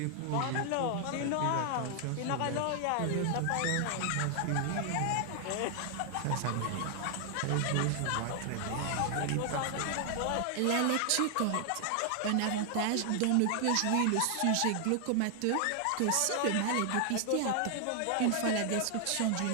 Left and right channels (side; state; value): both; different; correlation 0.00